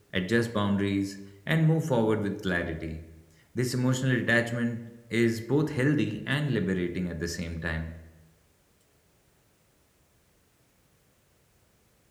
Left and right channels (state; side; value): identical; both; correlation 1.00